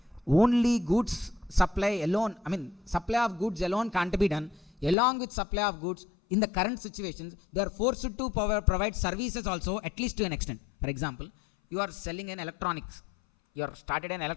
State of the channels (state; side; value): drops out; right; at 5.0 s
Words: only goods supply alone, supply of goods alone can't be done. Along with supply of goods, in the current situations, they are forced to provide services also, at least to an extent. For example, you are selling an electronics. You are started an